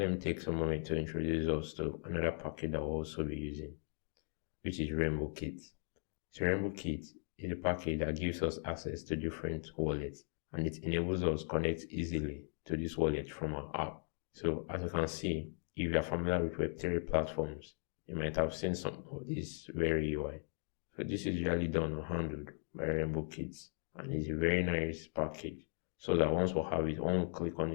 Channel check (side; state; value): right; silent; 52 dB below the other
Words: me take some moment to introduce us to another package that we'll also be using, which is Rainbow Kit. So Rainbow Kit is a package that gives us access to different wallets and it enables us to connect easily to this wallet from our app. So as you can see, if you are familiar with Web3 platforms, you might have seen some of this very UI. So this is usually done or handled by Rainbow Kits and it's a very nice package. So that once we have it, one click on